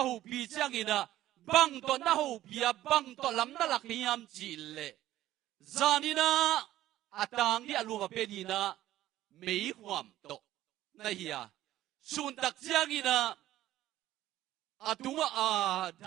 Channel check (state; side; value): quieter; left; 14.1 dB